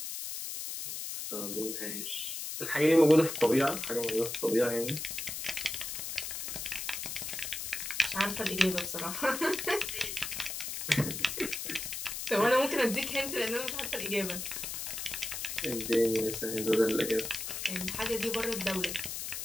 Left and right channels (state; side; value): noise; left; hiss, 5 dB below the sound